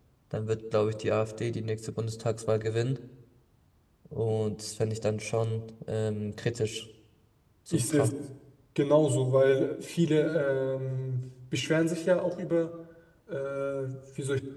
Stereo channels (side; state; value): both; identical; correlation 1.00